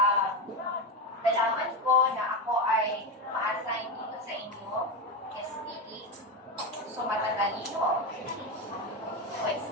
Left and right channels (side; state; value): both; normal; correlation 0.14